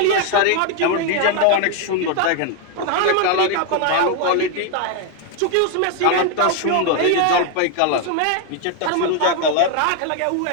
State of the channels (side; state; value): both; different; correlation 0.01